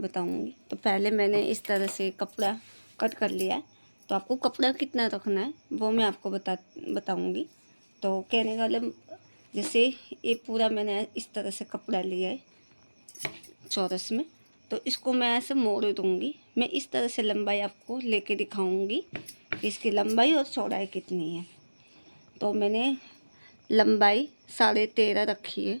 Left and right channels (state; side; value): inverted; both; correlation -1.00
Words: बताऊंगी। तो पहले मैंने इस तरह से कपड़ा कट कर लिया है। तो आपको कपड़ा कितना रखना है वो मैं आपको बताऊंगी। तो कहने का मतलब जैसे ये पूरा मैंने इस तरह से कपड़ा लिया है चौरस में, तो इसको मैं ऐसे मोड़ दूंगी। मैं इस तरह से लंबाई आपको लेके दिखाऊंगी कि इसकी लंबाई और चौड़ाई कितनी है। तो मैंने लंबाई 13.5 रखी है